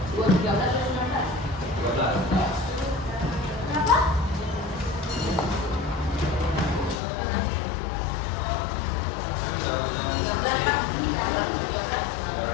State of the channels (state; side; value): drops out; right; at 7.0 s